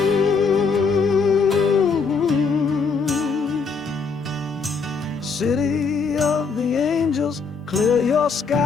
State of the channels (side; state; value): right; quieter; 5.0 dB